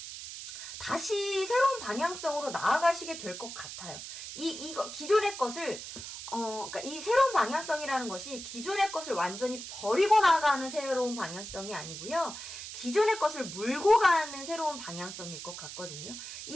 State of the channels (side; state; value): right; noise; hiss, 10 dB below the sound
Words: 다시 새로운 방향성으로 나아가시게 될 것 같아요. 이거 기존의 것을 그러니까 이 새로운 방향성이라는 것이 기존의 것을 완전히 버리고 나가는 새로운 방향성이 아니고요. 기존의 것을 물고 가는 새로운 방향성일 것 같거든요.